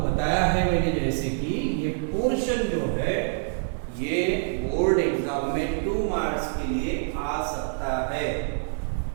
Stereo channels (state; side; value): silent; left; 56 dB below the other